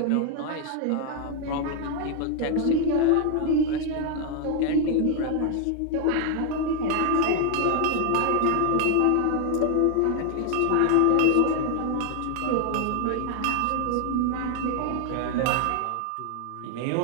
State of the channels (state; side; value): different; both; correlation 0.00